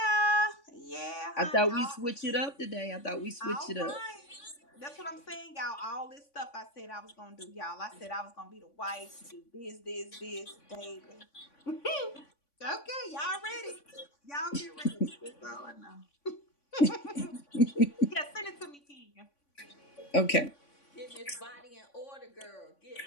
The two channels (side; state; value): right; late; 3.5 ms